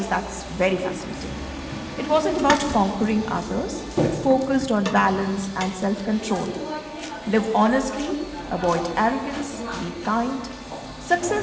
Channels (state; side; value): identical; both; correlation 1.00